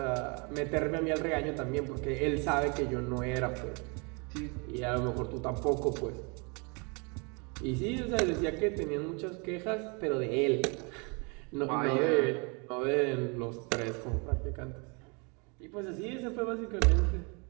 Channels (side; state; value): left; quieter; 32.4 dB